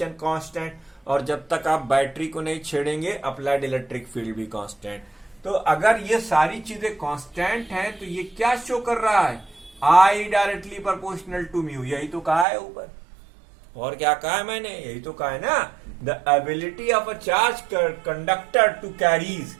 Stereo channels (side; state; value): left; drops out; at 12.5 s